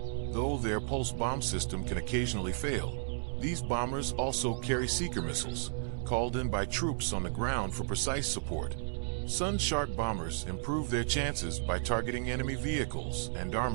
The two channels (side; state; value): left; silent; 56 dB below the other